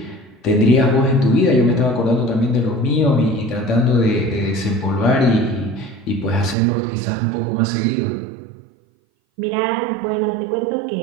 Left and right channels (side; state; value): left; drops out; at 6.6 s